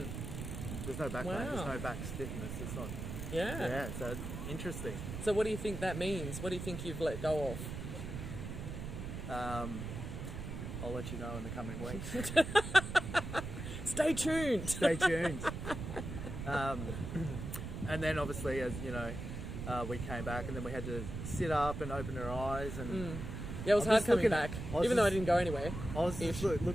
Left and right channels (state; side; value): noise; right; rumble, 6 dB below the sound